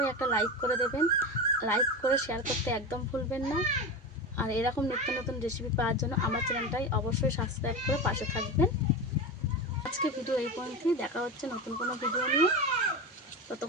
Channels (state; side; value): normal; both; correlation 0.23